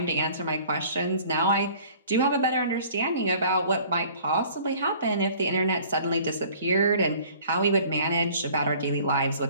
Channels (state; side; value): inverted; both; correlation -0.51